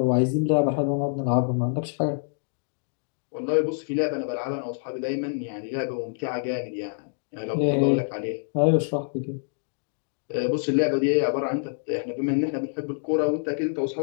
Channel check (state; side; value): silent; right; digital silence